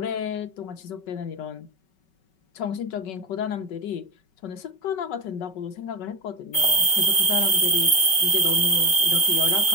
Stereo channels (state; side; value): late; right; 5.3 ms